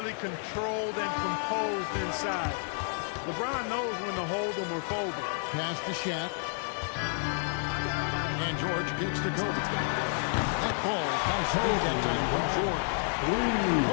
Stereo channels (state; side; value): silent; right; 58 dB below the other